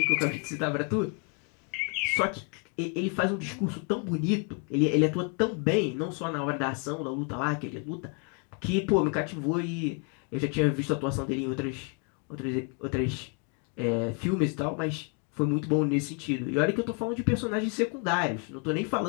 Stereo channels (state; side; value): quieter; right; 36.6 dB